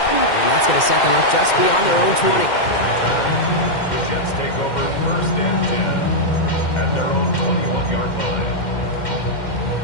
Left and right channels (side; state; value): right; late; 2.1 ms